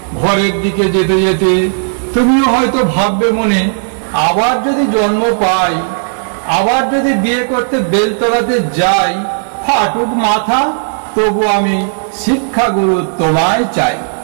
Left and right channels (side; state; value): left; silent; digital silence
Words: ঘরের দিকে যেতে যেতে তুমিও হয়তো ভাববে মনে, আবার যদি জন্ম পাই, আবার যদি বিয়ে করতে বেলতলাতে যাই, ফাটুক মাথা তবু আমি শিক্ষাগুরু তোমায় চাই।